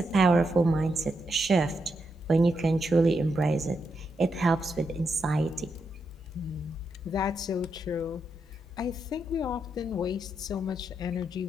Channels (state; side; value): normal; both; correlation 0.82